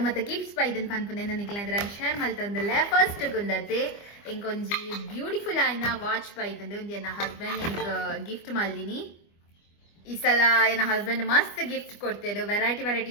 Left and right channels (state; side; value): late; right; 25 ms